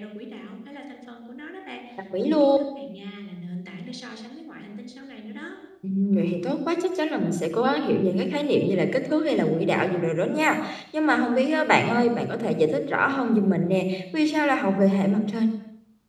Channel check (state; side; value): identical; both; correlation 1.00